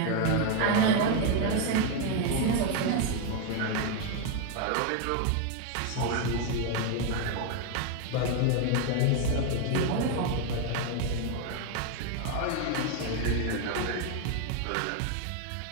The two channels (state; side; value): different; both; correlation 0.01